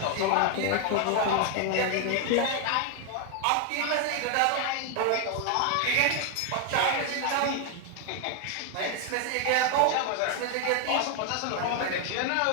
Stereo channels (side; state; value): both; different; correlation 0.00